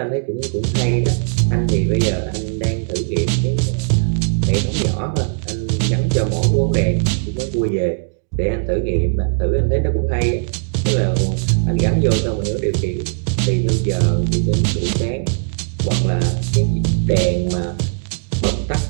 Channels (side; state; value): left; silent; digital silence